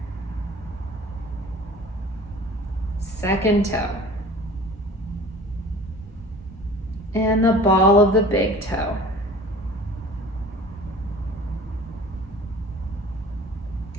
Second toe. And the ball of the big toe.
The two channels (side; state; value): both; normal; correlation 0.44